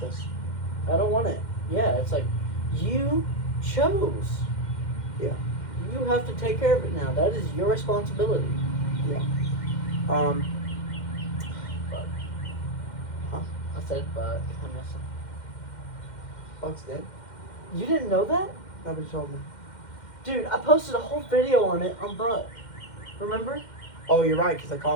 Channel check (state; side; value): late; right; 2.1 ms